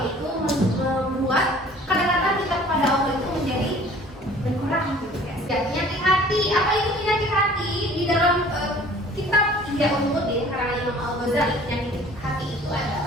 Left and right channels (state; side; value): normal; both; correlation 0.50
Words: yaitu membuat kedekatan kita kepada Allah itu menjadi berkurang. Penyakit hati, apa itu penyakit hati? Di dalam kitab Ihya Ulumuddin karya Imam Al-Ghazali, penyakit hati itu